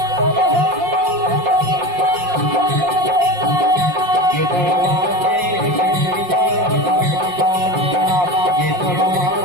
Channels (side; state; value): left; late; 5.6 ms